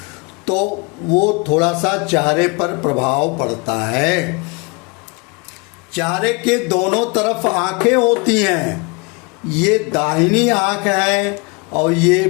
तो वो थोड़ा सा चेहरे पर प्रभाव पड़ता है। चेहरे के दोनों तरफ आंखें होती हैं। ये दाहिनी आंख है और ये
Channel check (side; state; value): right; quieter; 30.0 dB